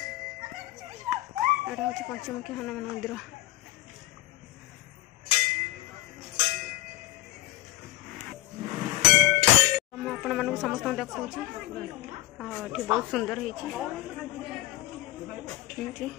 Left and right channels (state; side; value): quieter; right; 16.9 dB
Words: यहाँ हूँ पंचमुखी हनुमान मंदिर। आपण मानक समस्त देखा बहुत सुंदर है।